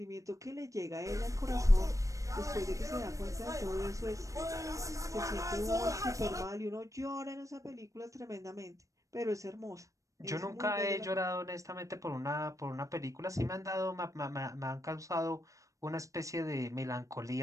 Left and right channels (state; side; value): late; left; 0.16 ms